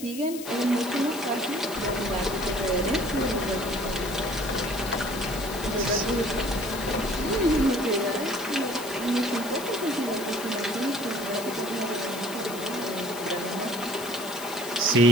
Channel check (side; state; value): left; noise; hiss, 12 dB below the sound